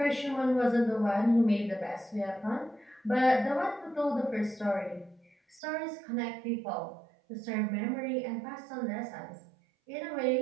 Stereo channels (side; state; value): left; drops out; at 5.6 s